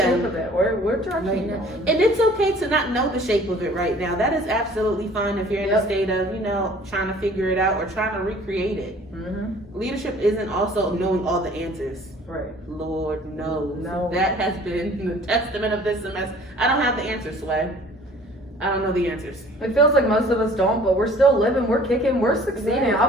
of it? Where direction right you now. going? And it's okay to not know the shape of it right now. That is absolutely fine if you're in a state of, you know, trying to figure it out or trying to recreate it. Leadership isn't also knowing all the answers. Right. Lord knows. No. That has been the testament of this semester. I don't have the answers, Sway. I don't know the answers. It feels like most of us don't, but we're still living, we're kicking, we're succeeding. I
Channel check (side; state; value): both; normal; correlation 0.51